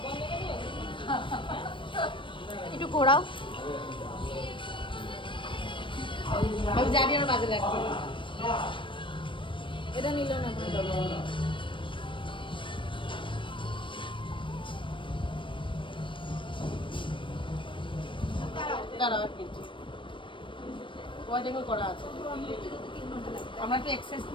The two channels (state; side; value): late; right; 0.25 ms